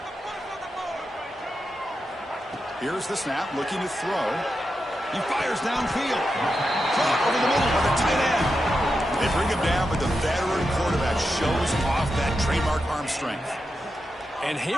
Here's the snap, looking to throw. He fires downfield. Caught over the middle by the tight end. They bring him down, but the veteran quarterback shows off that trademark arm strength. And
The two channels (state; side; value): normal; both; correlation 0.88